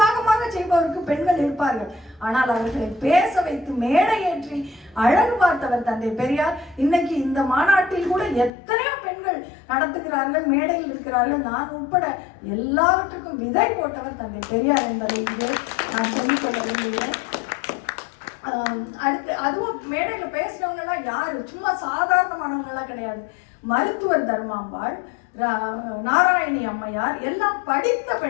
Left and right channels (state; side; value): drops out; right; at 8.5 s